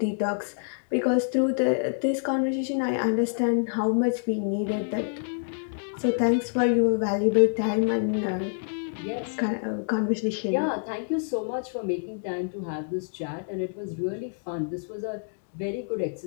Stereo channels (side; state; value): right; silent; digital silence